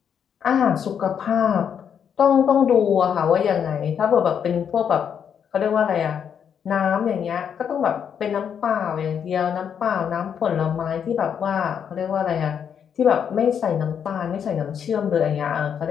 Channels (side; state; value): right; quieter; 7.9 dB